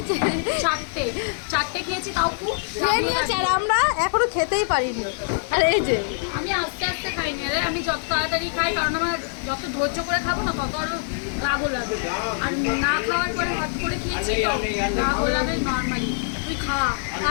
চারটে খেয়েছি তাও খুব খেয়ে নিয়েছে আর আমরা এখনো খেতেই পারিনি। আর এই যে আমি আস্তে আস্তে খাইনি রে, আমি যত তাড়াতাড়ি খাই কারণ আমার যত ধৈর্য করে খাবো না তত আরো রাগও লাগে। আর না খাওয়ার পরে হাত করে খেয়েছি তো রাগও লাগে নর্মালি। তুই খা।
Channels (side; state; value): right; silent; digital silence